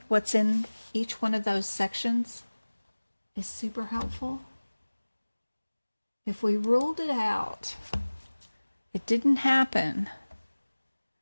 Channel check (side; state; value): both; inverted; correlation -1.00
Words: what's in each one of those sections is super helpful. If we ruled it out, it didn't happen,